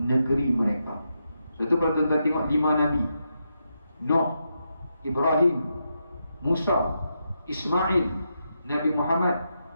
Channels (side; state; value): both; inverted; correlation -0.84